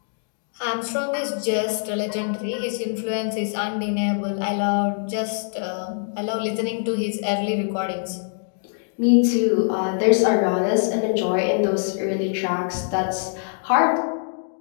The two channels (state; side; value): silent; right; digital silence